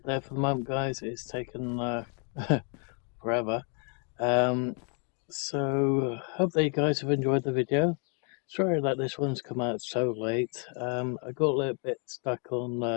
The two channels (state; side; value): quieter; right; 39.9 dB